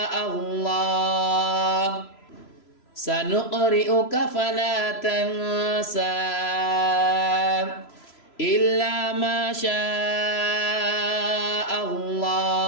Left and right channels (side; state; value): right; late; 3.0 ms